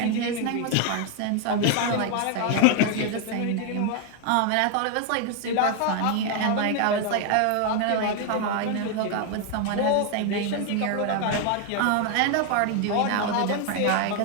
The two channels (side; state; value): both; different; correlation 0.01